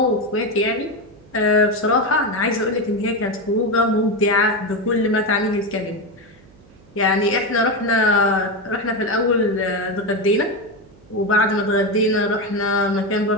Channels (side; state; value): right; noise; hum, 26 dB below the sound